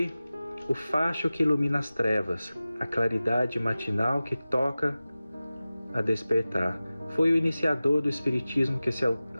o facho que ilumina as trevas, a claridade matinal que toca a despertar. Foi o iniciador do espiritismo que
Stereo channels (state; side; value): inverted; both; correlation -0.96